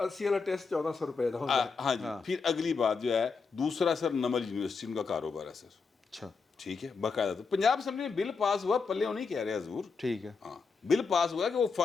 والا ٹیسٹ 1400 روپے کا ہوتا ہے. ہاں جی. پھر اگلی بات جو ہے دوسرا سر نمل یونیورسٹی ان کا کاروبار ہے سر. اچھا ٹھیک ہے باقاعدہ. تو پنجاب اسمبلی میں بل پاس ہوا, پلے نہیں کہہ رہے حضور, ٹھیک ہے. ہاں بل پاس ہوا کہ وہ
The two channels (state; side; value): quieter; right; 4.9 dB